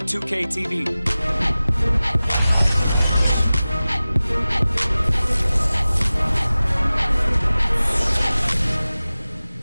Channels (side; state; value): both; inverted; correlation -0.97